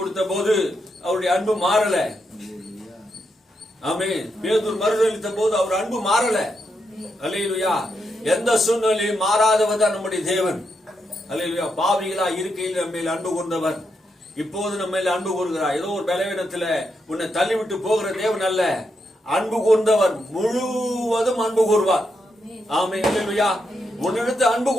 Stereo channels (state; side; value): normal; both; correlation 0.82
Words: போது அவருடைய அன்பு மாறல. ஆமென். பேதுரு மறுதலித்த போது அவர் அன்பு மாறல. அல்லேலூயா. எந்த சூழ்நிலையும் மாறாதவர் தான் நம்முடைய தேவன். அல்லேலூயா. பாவிகளா இருக்கையில் நம்ம மேல் அன்பு கொண்டவர் இப்போது நம்ம மேல் அன்பு கூறுகிறார். ஏதோ ஒரு பலவீனத்துல உன்னை தள்ளிவிட்டு போகிற தேவன் அல்ல. அன்பு கொண்டவர் முழுவதும் அன்பு கூறுவார். ஆமென். அல்லேலூயா. உன்னிடத்து அன்பு